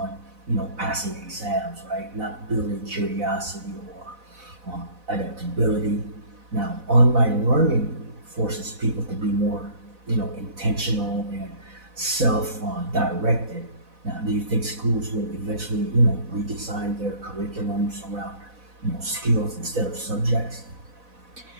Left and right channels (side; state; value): left; late; 4.0 ms